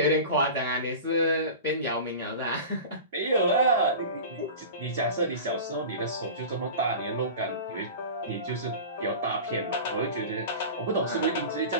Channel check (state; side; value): inverted; both; correlation -0.33